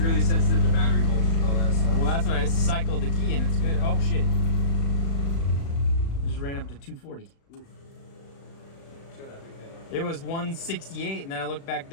sensitive to battery voltage and all that stuff. Well, that's when I cycled the key and it's good. Oh shit! Just ran up to 240. Show that big head off. It was 168, and then I looked back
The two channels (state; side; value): late; right; 36 ms